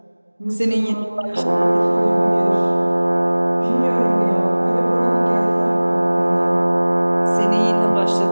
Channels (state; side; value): inverted; both; correlation -1.00